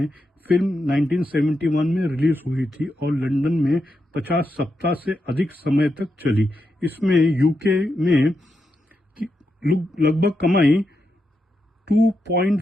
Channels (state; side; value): normal; both; correlation 0.85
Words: फिल्म 1971 में रिलीज हुई थी और लंदन में 50 सप्ताह से अधिक समय तक चली। इसमें यूके में लगभग कमाई